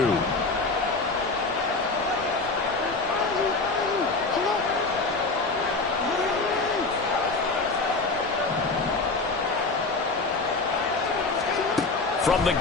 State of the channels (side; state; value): right; quieter; 3.7 dB